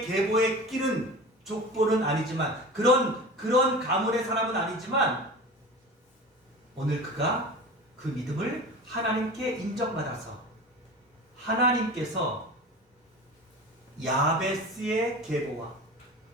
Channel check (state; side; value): normal; both; correlation 0.33